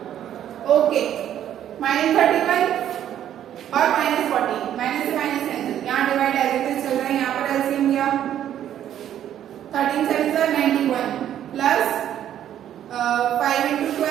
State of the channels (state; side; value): quieter; left; 10.8 dB